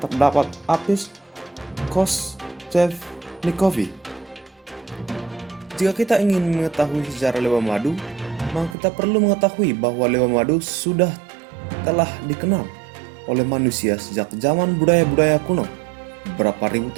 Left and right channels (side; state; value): left; drops out; at 8.8 s